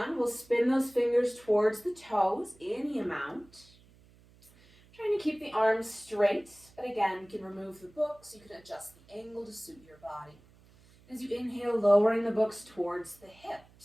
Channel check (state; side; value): noise; right; hum, 27 dB below the sound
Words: we'll spin those fingers towards the toes, any amount. Trying to keep the arms straight, but again, you can remove the books, you can adjust the angle to suit your body. As you inhale, lowering the books towards the